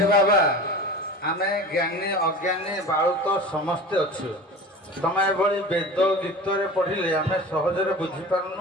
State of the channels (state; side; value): normal; both; correlation 0.36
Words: ବାବା ଆମେ ଜ୍ଞାନୀ ଅଜ୍ଞାନୀ ବାଳୁତ ସମସ୍ତେ ଅଛୁ ତମେ ଏଭଳି ବେଦ ଗୀତରେ ପଢିଲେ ଆମେ ସହଜରେ